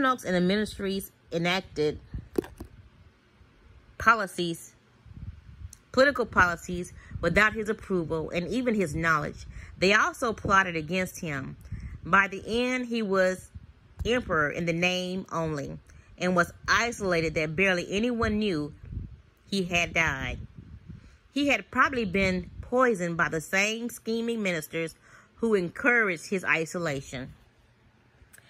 and the ministries enacted political policies without his approval and even his knowledge. They also plotted against him. By the end, he was emperor in the name only and was isolated that barely anyone knew he had died. He had probably been poisoned by the same scheming ministers who encouraged his isolation.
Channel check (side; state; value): both; identical; correlation 1.00